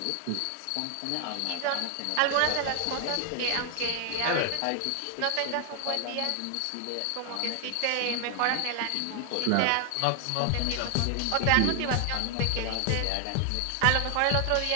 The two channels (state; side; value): different; both; correlation 0.00